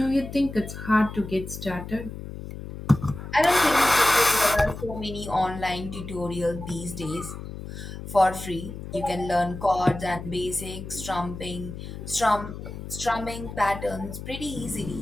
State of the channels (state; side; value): noise; left; hum, 10 dB below the sound